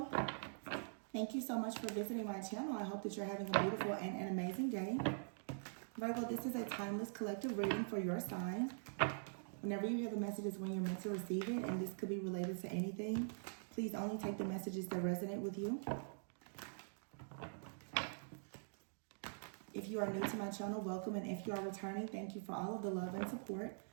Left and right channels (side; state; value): left; silent; digital silence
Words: thank you so much for visiting my channel. I hope that you're having a beautiful and an amazing day. Virgo, this is a timeless collective reading for your sign. Whenever you hear the messages when you're meant to receive it, and this could be related to anything, please only take the messages that resonate with you. If you are new to my channel, welcome, and if you are returning, thank you for all of the love and support.